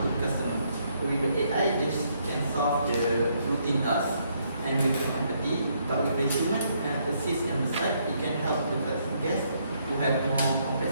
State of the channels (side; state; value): both; inverted; correlation -0.72